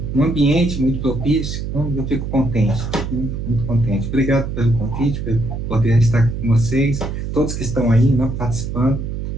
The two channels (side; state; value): right; noise; hum, 5 dB below the sound